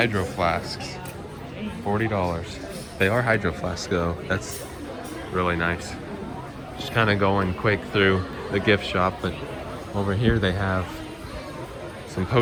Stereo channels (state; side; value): identical; both; correlation 1.00